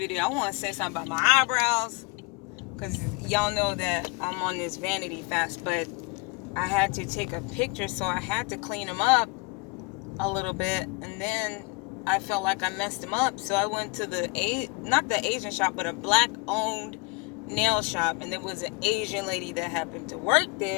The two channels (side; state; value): right; quieter; 28.1 dB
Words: I want to say something about my eyebrows. Because y'all know that I'm on this vanity fast, but I had to take a picture, so I had to clean them up a little bit. And then I felt like I messed them up, so I went to not the Asian shop, but a black-owned nail shop, and there was an Asian lady that happened to work